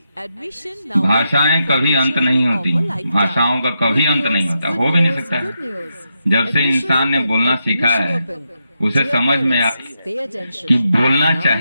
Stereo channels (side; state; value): both; inverted; correlation -0.84